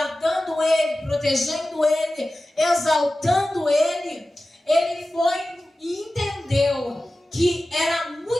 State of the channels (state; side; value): normal; both; correlation 0.95